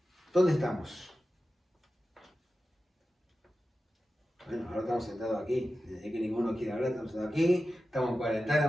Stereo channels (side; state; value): both; normal; correlation 0.93